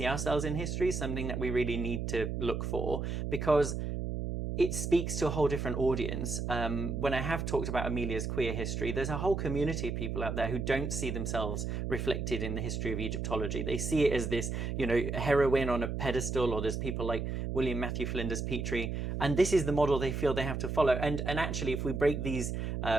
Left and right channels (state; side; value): noise; right; hum, 3 dB below the sound